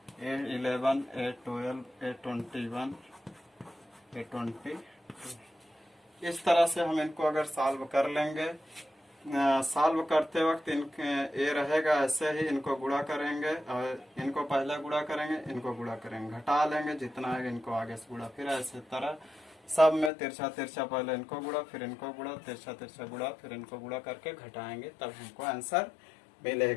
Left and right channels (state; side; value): drops out; right; at 20.1 s